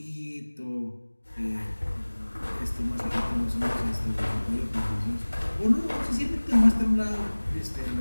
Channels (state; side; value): inverted; both; correlation -1.00